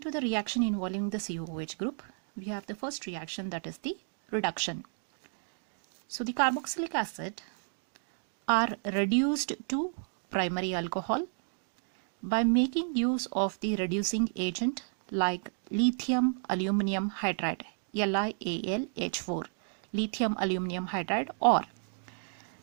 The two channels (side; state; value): left; silent; 56 dB below the other